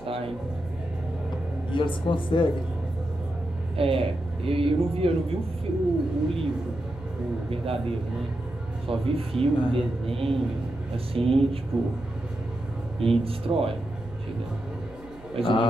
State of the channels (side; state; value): right; noise; hum, 21 dB below the sound